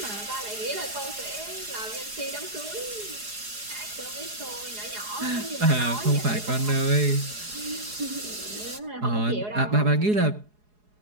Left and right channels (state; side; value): late; left; 4.8 ms